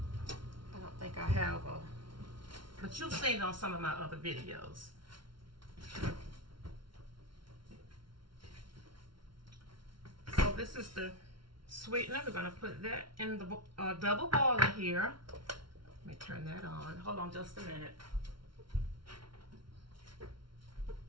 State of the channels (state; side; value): late; left; 0.73 ms